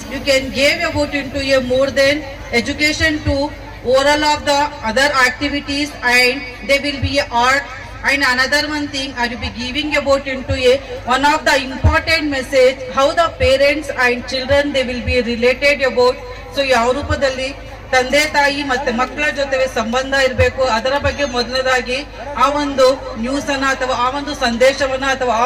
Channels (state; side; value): identical; both; correlation 1.00